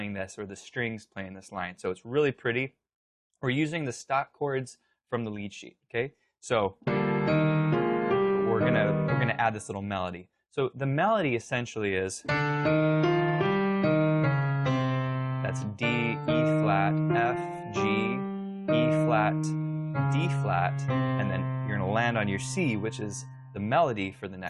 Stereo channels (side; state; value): both; identical; correlation 1.00